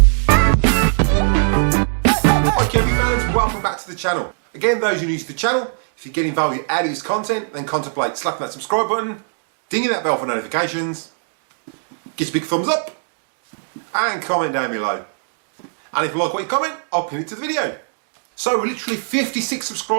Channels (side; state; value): left; silent; digital silence